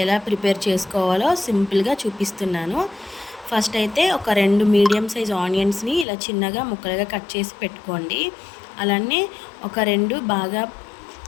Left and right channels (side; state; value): right; drops out; at 6.1 s